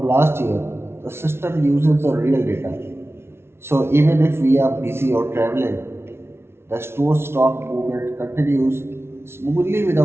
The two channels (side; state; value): left; late; 0.12 ms